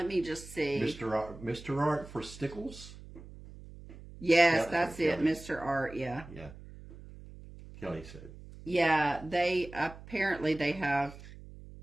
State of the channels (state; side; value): noise; right; hum, 16 dB below the sound